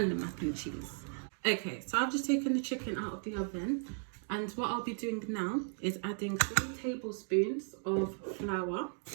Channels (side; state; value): left; silent; 54 dB below the other